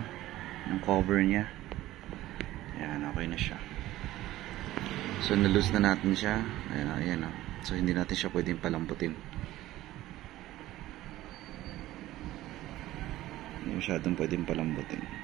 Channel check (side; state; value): left; quieter; 15.6 dB